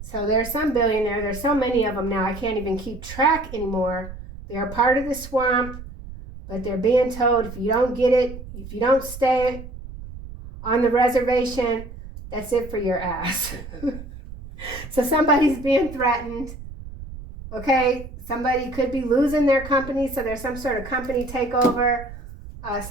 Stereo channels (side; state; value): right; noise; rumble, 13 dB below the sound